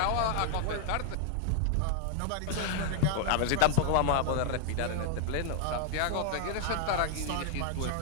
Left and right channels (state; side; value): different; both; correlation 0.00